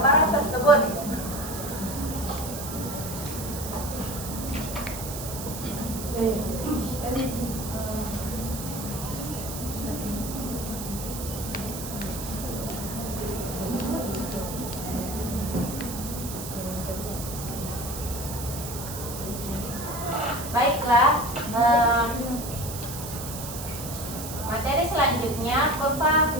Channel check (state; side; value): noise; right; hiss, 9 dB below the sound